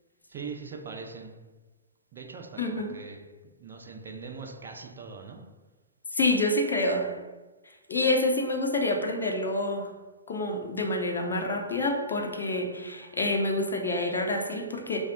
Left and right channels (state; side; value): inverted; both; correlation -0.31